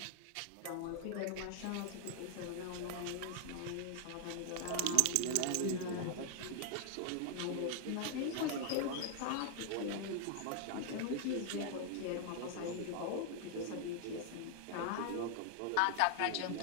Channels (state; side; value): different; both; correlation 0.00